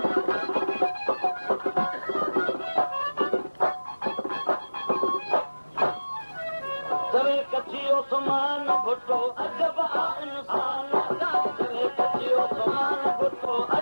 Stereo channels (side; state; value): both; inverted; correlation -1.00